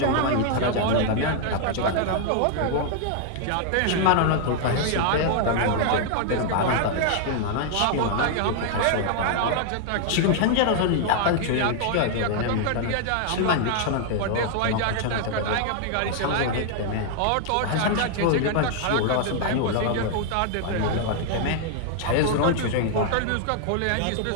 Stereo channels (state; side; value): different; both; correlation 0.00